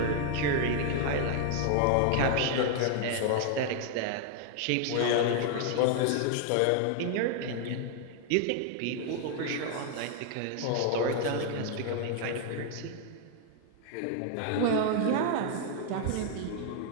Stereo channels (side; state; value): both; different; correlation 0.00